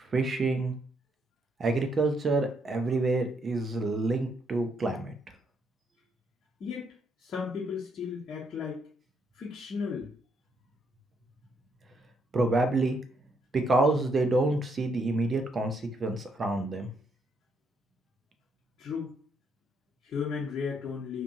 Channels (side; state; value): both; normal; correlation 0.74